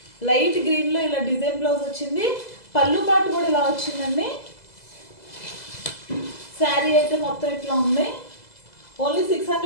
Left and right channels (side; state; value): right; late; 2.0 ms